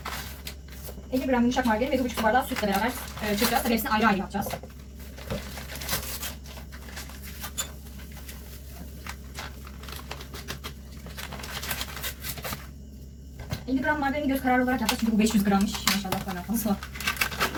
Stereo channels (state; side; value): identical; both; correlation 1.00